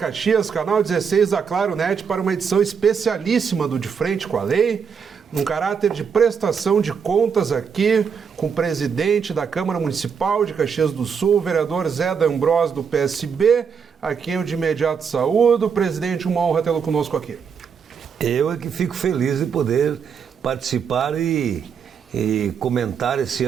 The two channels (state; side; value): quieter; left; 6.6 dB